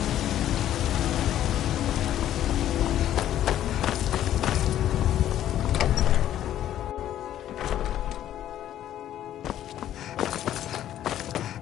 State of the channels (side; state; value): right; quieter; 11.8 dB